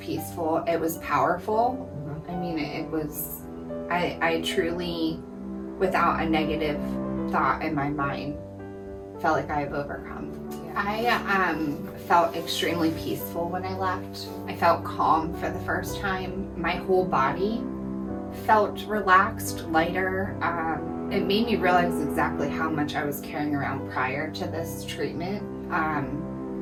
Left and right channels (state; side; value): identical; both; correlation 1.00